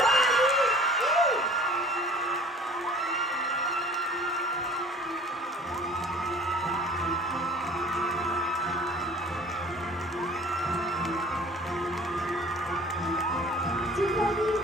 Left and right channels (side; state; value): both; normal; correlation 0.47